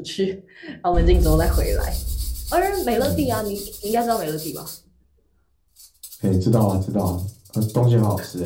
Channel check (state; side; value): identical; both; correlation 1.00